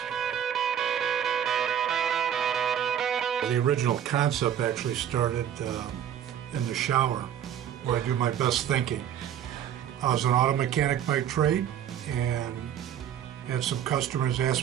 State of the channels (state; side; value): quieter; left; 9.8 dB